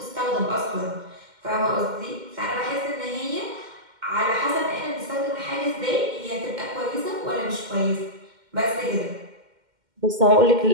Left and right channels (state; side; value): late; left; 2.1 ms